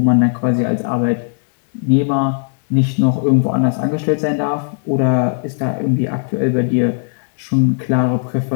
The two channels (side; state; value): right; silent; 67 dB below the other